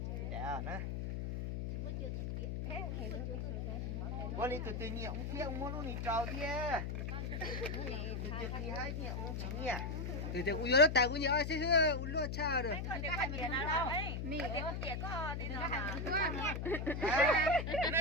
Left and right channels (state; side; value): noise; left; hum, 3 dB below the sound